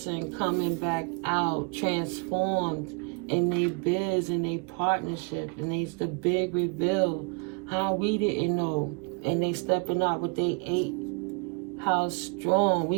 coming back out transformed in their biz and their partnership, and it's the big reveal how we didn't know, and they stepping out with they 8 house strong.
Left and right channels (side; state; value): left; quieter; 34.3 dB